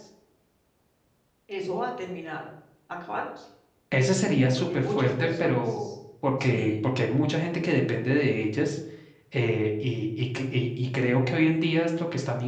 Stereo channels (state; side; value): identical; both; correlation 1.00